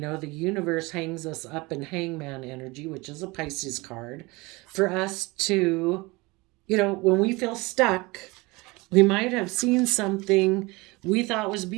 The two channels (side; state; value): left; quieter; 23.8 dB